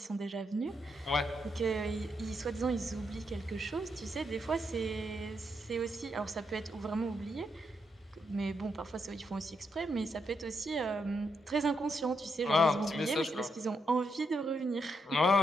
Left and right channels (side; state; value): both; normal; correlation 0.80